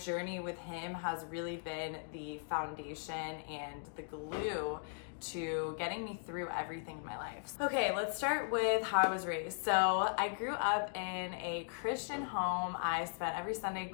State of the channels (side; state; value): right; silent; digital silence